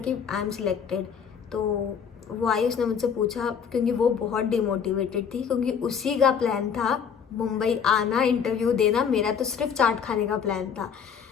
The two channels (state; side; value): quieter; right; 7.1 dB